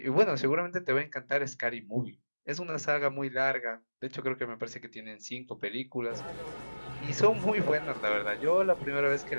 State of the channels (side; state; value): both; inverted; correlation -1.00